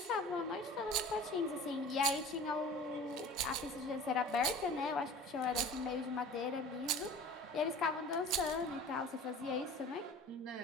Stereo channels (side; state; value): both; normal; correlation 0.42